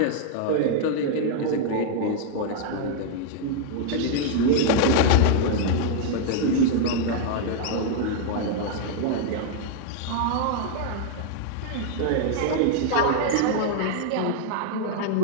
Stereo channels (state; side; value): different; both; correlation -0.01